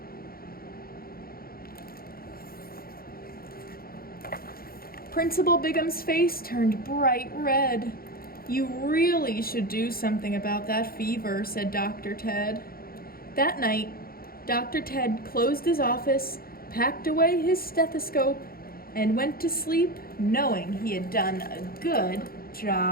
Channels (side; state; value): right; late; 0.43 ms